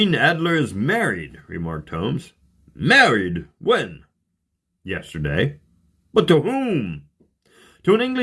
Adler is married," remarked Holmes. "Married? When?" "Yesterday." "But to whom?" "To an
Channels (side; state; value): both; identical; correlation 1.00